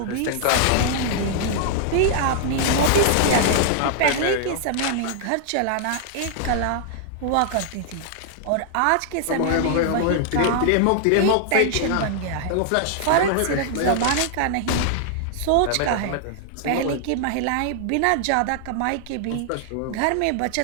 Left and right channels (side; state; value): both; different; correlation 0.00